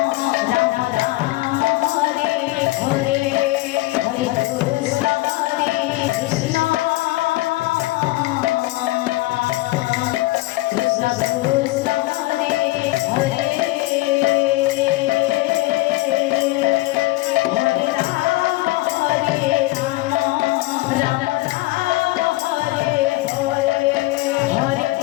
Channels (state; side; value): quieter; right; 19.5 dB